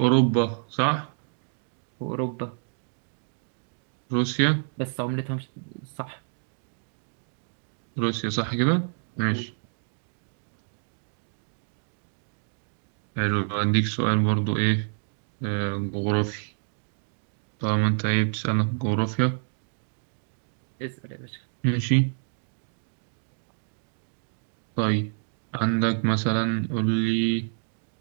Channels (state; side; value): silent; left; digital silence